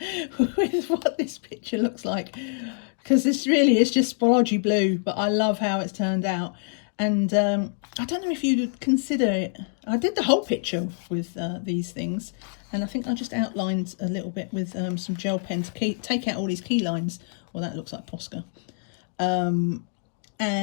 what this picture looks like, because this really is just splodgy blue, but I love how it's turned out. And I don't know if you would consider it, I did the whole picture with these things, and I think I just outlined a little bit with some gel pen to take out all these key lines. Well, that looks like Posca.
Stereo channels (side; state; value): right; silent; digital silence